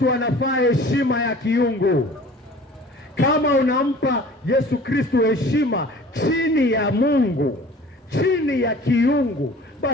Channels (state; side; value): normal; both; correlation 0.46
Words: anafaa heshima ya kiungu. Kama unampa Yesu Kristo heshima chini ya Mungu, chini ya kiungu,